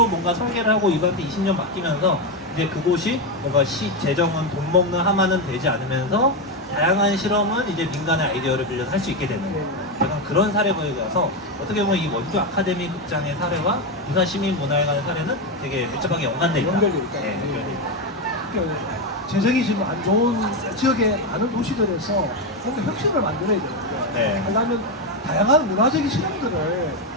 뭔가 설계를 하고 이분한테 20년 맡기면서 이제 그곳이 뭔가 시 재정은 돈 먹는 하마는 되지 않으면서 다양한 실험은 이제 민간의 아이디어를 빌려서 할 수 있게 되는 약간 그런 사례보여서 어떻게 보면 이 원주 아카데미 극장의 사례와 부산 시민문화회관의 사례는 되게 밀접하게 연관돼 있다. 연결돼 있다. 네, 연결돼 있다. 재정이 지금 안 좋은 지역의 많은 도시들에서 뭔가 혁신을 만들어야 되는데 네. 왜냐하면 다양한 문화적인 실험들을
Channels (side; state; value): both; normal; correlation 0.09